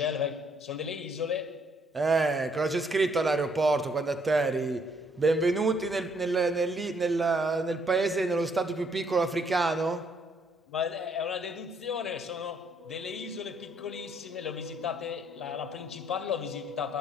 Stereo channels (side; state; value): both; normal; correlation 0.68